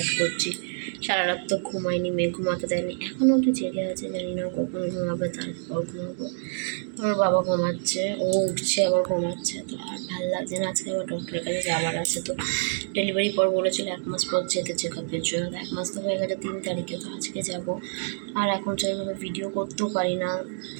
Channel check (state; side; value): silent; left; digital silence